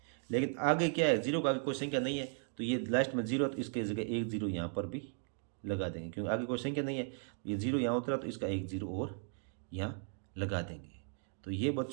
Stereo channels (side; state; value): left; silent; 53 dB below the other